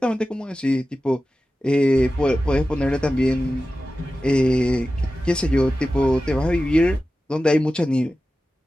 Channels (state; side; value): normal; both; correlation 0.94